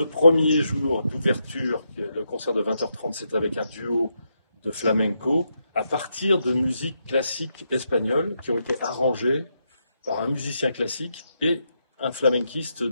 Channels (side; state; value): both; inverted; correlation -0.82